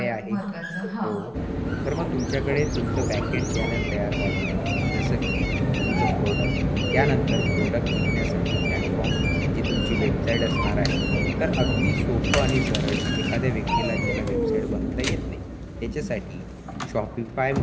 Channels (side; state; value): both; identical; correlation 1.00